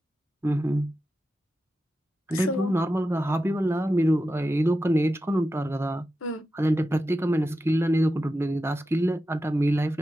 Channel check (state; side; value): normal; both; correlation 0.91